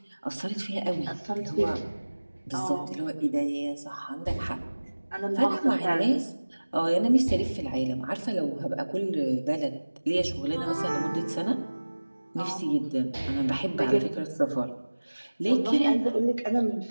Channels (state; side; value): inverted; both; correlation -1.00